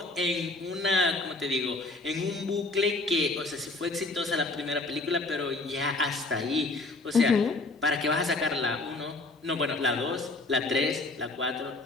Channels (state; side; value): quieter; right; 3.1 dB